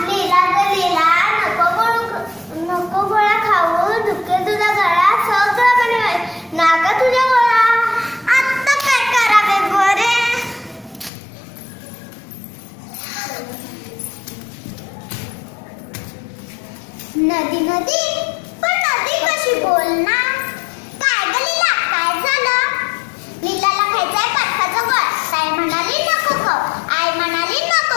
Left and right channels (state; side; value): drops out; right; at 11.1 s